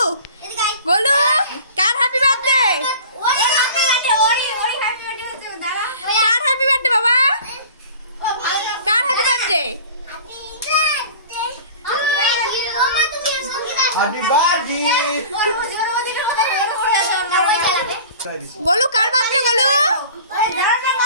গোলু, কার হ্যাপি বার্থডে? কার হ্যাপি বার্থডে বাবা? কার happy birthday? Happy birthday Golu, কার বার্থডে গোলু?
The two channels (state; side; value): inverted; both; correlation -0.42